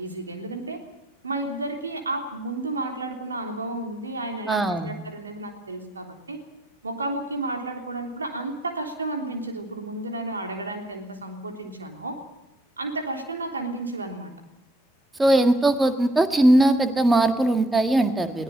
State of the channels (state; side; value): normal; both; correlation 0.66